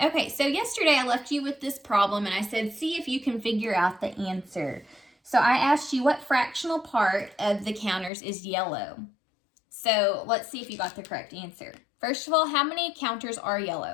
so yesterday I left you with this problem and I said, see if you can figure out the answer. So I asked you what fractional part of the counters is yellow. So let's see if you got the correct answer. First of all, how many counters are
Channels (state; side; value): drops out; right; at 8.1 s